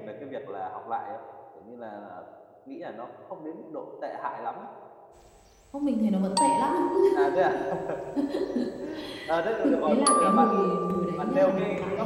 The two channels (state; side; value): identical; both; correlation 1.00